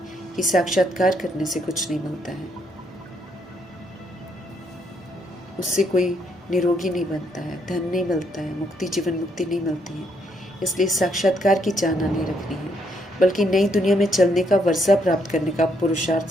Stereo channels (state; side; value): normal; both; correlation 0.73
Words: कि साक्षात्कार करने से कुछ नहीं मिलता है, उससे कोई निरोगी नहीं बनता है, धन नहीं मिलता है, मुक्ति जीवन मुक्ति नहीं मिलती है। इसलिए साक्षात्कार की चाहना नहीं रखनी है, बल्कि नई दुनिया में चलने का वर्षा प्राप्त करने का पुरुषार्थ